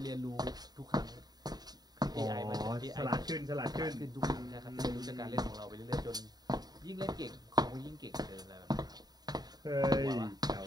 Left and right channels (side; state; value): left; late; 0.19 ms